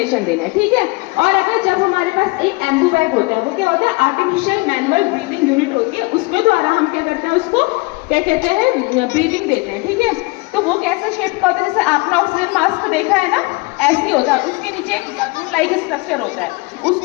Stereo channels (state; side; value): quieter; right; 25.7 dB